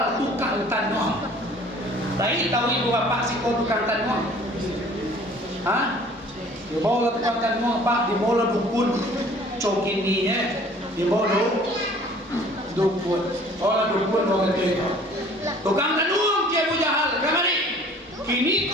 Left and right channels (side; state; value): both; normal; correlation 0.51